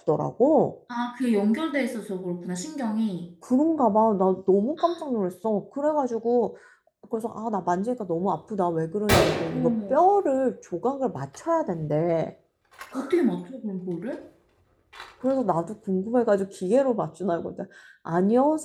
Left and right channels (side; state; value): both; identical; correlation 1.00